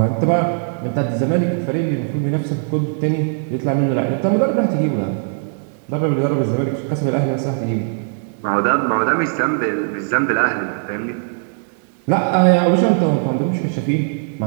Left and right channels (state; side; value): silent; left; digital silence